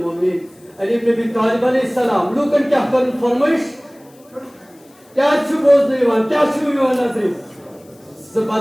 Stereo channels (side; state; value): left; noise; hiss, 30 dB below the sound